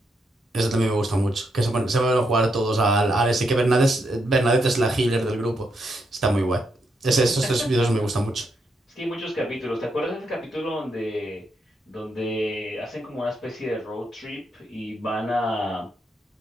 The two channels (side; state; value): both; normal; correlation 0.80